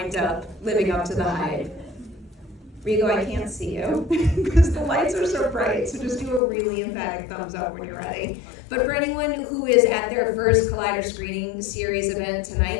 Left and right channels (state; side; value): drops out; right; at 6.4 s